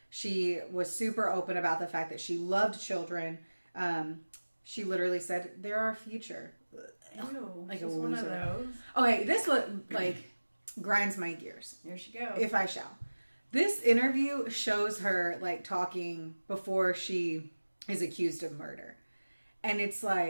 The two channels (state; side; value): inverted; both; correlation -1.00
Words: She was super open about the fact that she loved children. She literally said, "They're our future." Ew, like a she's one of loser. those. Okay, this one grinds my gears. Here she goes. If I shall. This interview shows her talking before she is accused of murder. And it's